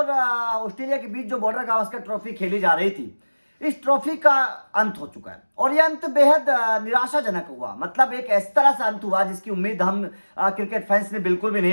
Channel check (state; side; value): inverted; both; correlation -1.00